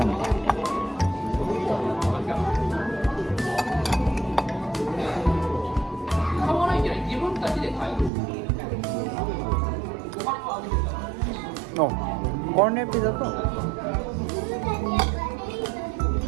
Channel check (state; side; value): drops out; left; at 8.1 s